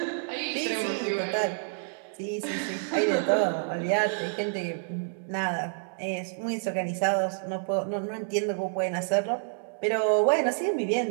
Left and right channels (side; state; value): left; silent; 59 dB below the other